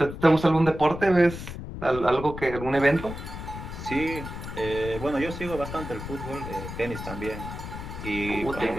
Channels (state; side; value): noise; left; rumble, 9 dB below the sound